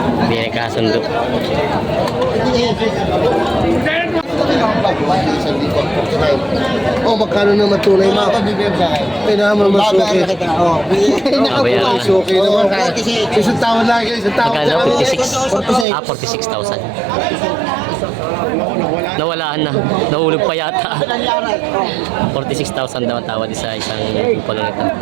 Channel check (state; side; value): drops out; left; at 15.9 s